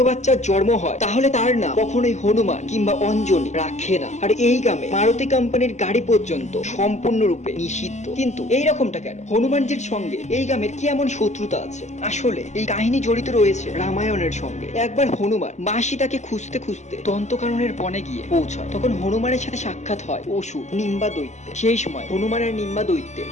বাচ্চার জন্ম হয় তাহলে তার নাম কখনোই হনুমান কিংবা অঞ্জলি রাখে না। আর এই গ্রামে মারুতি কোম্পানির গাড়ি পর্যন্ত সম্পূর্ণরূপে নিষিদ্ধ। কিন্তু এই রকমটা কেন? হনুমানজির সঙ্গে এই গ্রামের কি এমন শত্রুতা আছে? আসলে এই কাহিনী জড়িত রয়েছে রামায়ণের সঙ্গে। একবার হনুমান মা সীতাকে খুঁজতে খুঁজতে দন্তকাননের বনে গিয়ে পৌঁছায়। তখন হনুমানের সাথে সাক্ষাৎ হয় অসুর নিম্বা দৈত্যের। সেই সময় হনুমান আর নিম্বা দৈত্যের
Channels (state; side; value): late; right; 0.33 ms